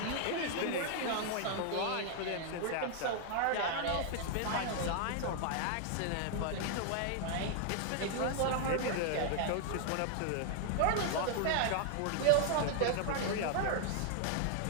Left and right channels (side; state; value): both; different; correlation 0.00